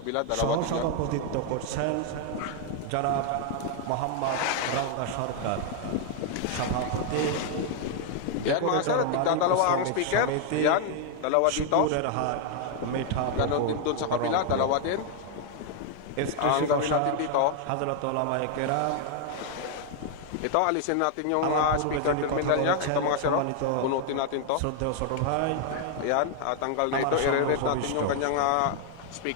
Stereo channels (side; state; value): both; different; correlation 0.00